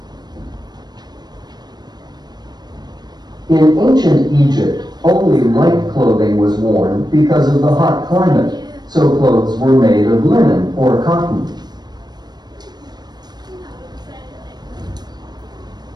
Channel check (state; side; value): late; left; 0.20 ms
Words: In ancient Egypt, only light clothing was worn because of the hot climate, so clothes were made of linen or cotton.